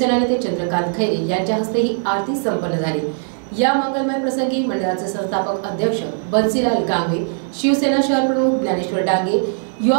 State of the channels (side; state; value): left; silent; digital silence